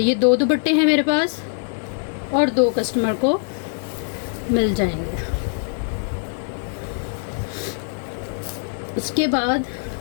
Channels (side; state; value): right; silent; digital silence